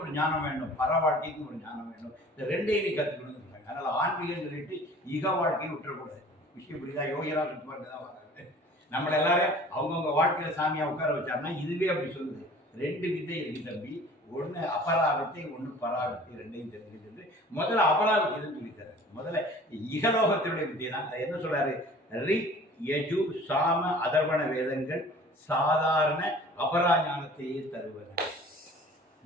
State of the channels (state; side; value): normal; both; correlation 0.47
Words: ஒரு ஞானம் வேண்டும், பர வாழ்க்கைக்கு ஒரு ஞானம் வேண்டும். இந்த ரெண்டையும் நீ கற்றுக்கணும்னு சொல்றாங்க. அதனால ஆன்மீகம் சொல்லிட்டு இக வாழ்க்கையை விட்டுறக்கூடாது. விஷயம் புரியுதா? யோகியராக சுற்றுவாங்க தான் வராது. நம்மளை எல்லாரும் அவங்கவுங்க வாழ்க்கையில சாமியா உட்கார வச்சாருன்னா இதுவே அப்படி சொல்லுது. ரெண்டு வித்தை இருக்கு தம்பி, ஒன்று அபராவித்தை, ஒன்று பராவித்தை. ரெண்டையும் தெரிஞ்சுட்டு முதல்ல அபராவித்தை தான் சொல்லித்தர. முதல்ல இகலோகத்தினுடைய வித்தை தான். என்ன சொல்றாரு, ரிக் யஜு சாம அதர்வண வேதங்கள் சாதாரண அபராஞானத்தையே தருவது.